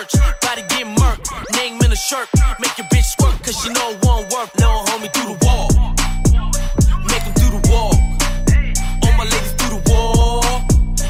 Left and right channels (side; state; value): both; identical; correlation 1.00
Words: Body get murked. Name in the shirt. Make your bitch squirt, cause she know it won't work. Little homie do the wall. Make him do the wall. All my ladies do the wall.